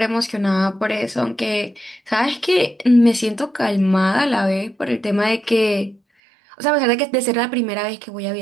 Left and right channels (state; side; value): drops out; left; at 6.0 s